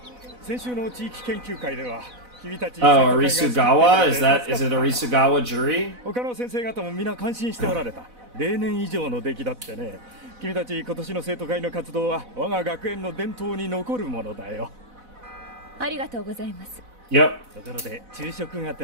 先週の地域研究会では君たち Oh, Arisugawa? Is it Arisugawa Juri? 他の先生方も皆感心しておられた例年以上の出来だってね君たち今年の生徒会の活動は我が学園の伝統に残るものだよありがとうございます Yep. ところで昼食が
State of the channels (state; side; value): late; left; 4.0 ms